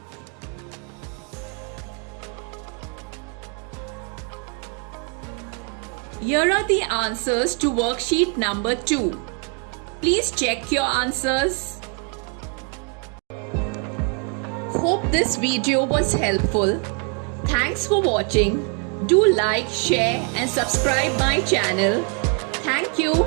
Here are the answers to worksheet number 2. Please check your answers. Hope this video was helpful. Thanks for watching. Do like, share and subscribe my channel. Thank you.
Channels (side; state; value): left; quieter; 38.5 dB